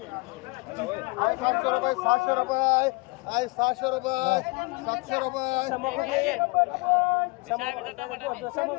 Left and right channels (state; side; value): quieter; right; 26.9 dB